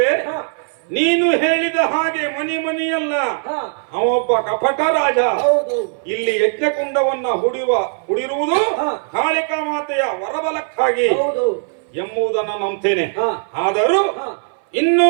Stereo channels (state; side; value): silent; left; 61 dB below the other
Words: ನೀನು ಹೇಳಿದ ಹಾಗೆ ಮನಿಯಲ್ಲ, ಅವೊಬ್ಬ ಕಪಟ ರಾಜ. ಇಲ್ಲಿ ಯಜ್ಞಕುಂಡವನ್ನ ಹುಡಿರುವುದು ಕಾಳಿಕಾ ಮಾತೆಯ ವರಬಲಕ್ಕಾಗಿ ಎಂಬುದನ್ನು ನಂಬ್ತೇನೆ. ಆದರೂ